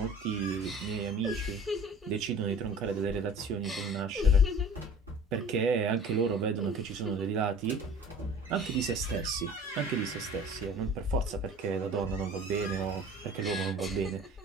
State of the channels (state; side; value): normal; both; correlation 0.44